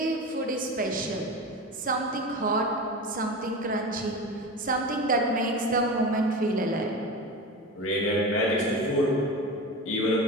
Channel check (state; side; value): normal; both; correlation 0.27